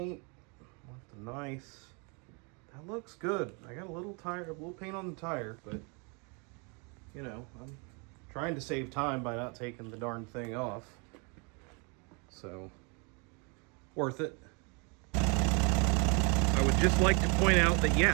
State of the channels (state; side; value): quieter; left; 33.2 dB